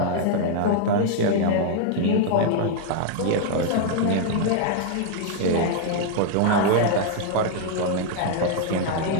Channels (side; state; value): both; different; correlation 0.00